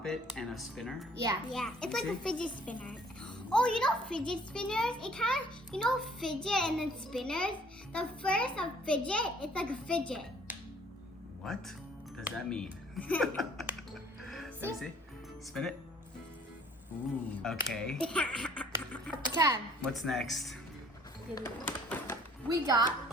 it and a spinner? Yeah. Yeah, it's like See? a fidget spinner. Oh, you know fidget spinners? It kind of, you know fidget and then spinners? The first of fidget, it's like a fidget. What does that mean? Let me see. Spin it. Ooh. Okay. 10. What's next? We got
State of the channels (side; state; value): both; normal; correlation 0.57